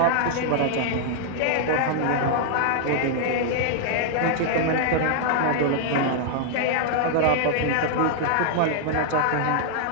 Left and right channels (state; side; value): different; both; correlation -0.01